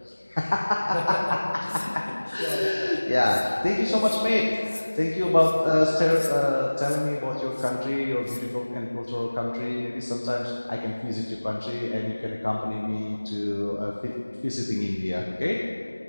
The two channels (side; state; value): both; inverted; correlation -1.00